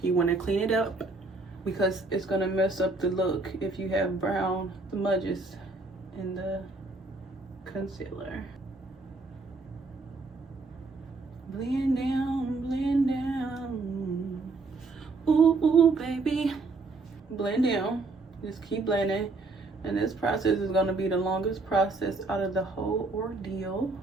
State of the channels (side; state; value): left; quieter; 3.5 dB